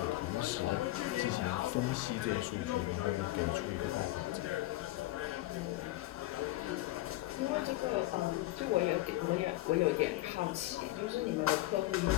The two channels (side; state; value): right; quieter; 17.4 dB